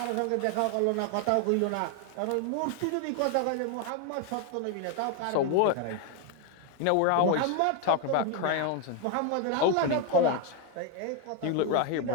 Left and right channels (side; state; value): both; different; correlation 0.01